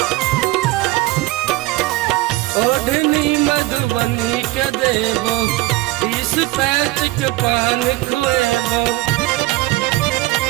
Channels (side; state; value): left; quieter; 18.8 dB